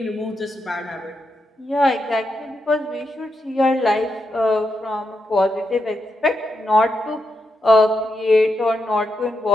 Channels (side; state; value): both; normal; correlation 0.84